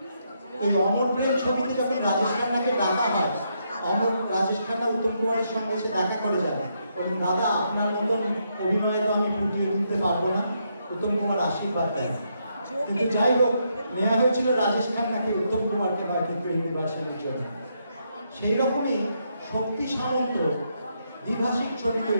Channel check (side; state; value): both; inverted; correlation -0.78